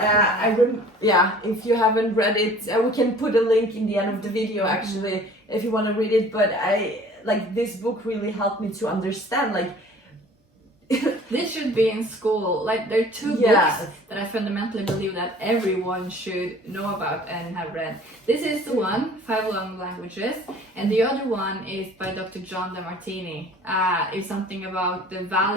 you haven't read it, we can put a link in the end of the video actually if you want to read it. But this book really helped me to understand this should be in school. Like, there are two books that I fundamentally believe that everyone should know about and have read. This is the one, 5 Love Languages, and the other one is by Dr. John DeMartini. It's something about the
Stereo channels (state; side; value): normal; both; correlation 0.49